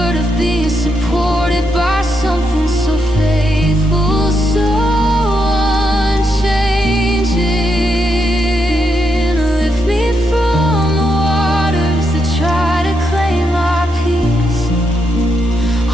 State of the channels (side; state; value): both; normal; correlation 0.81